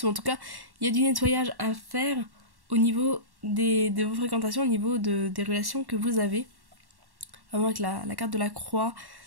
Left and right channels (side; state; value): left; late; 1.1 ms